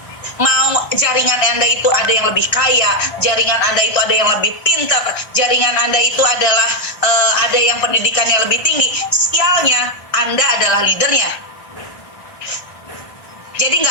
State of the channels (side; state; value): right; late; 1.9 ms